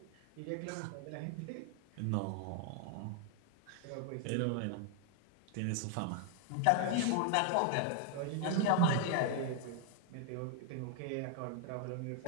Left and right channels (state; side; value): different; both; correlation 0.00